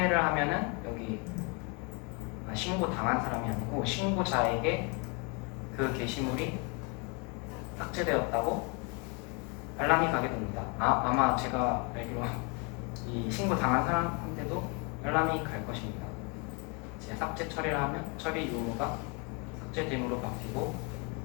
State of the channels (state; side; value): quieter; right; 31.3 dB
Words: 하면은 여기 신고 당한 사람이 아니고 신고자에게 그 게시물이 삭제되었다고 알람이 가게 됩니다. 아마 제가 알기로 이 신고 당한 사람한테도 알람이 갈 것입니다. 이제 삭제 처리를 하면 처리 유무가 삭제됨으로 바뀌고,